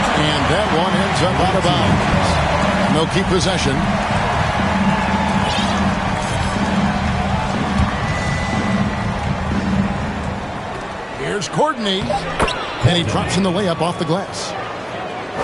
that one ends up out of bounds. And they'll keep possession. Here's Courtney. And he drops in the layup off the glass.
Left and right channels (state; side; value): identical; both; correlation 1.00